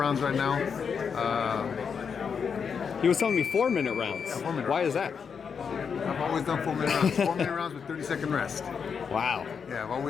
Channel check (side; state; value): right; quieter; 6.4 dB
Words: right now. He was telling me 4-minute rounds. 4-minute Why is that? I've always done 4-minute rounds. 4-minute rounds with 30-second rest. Wow. Yeah, I've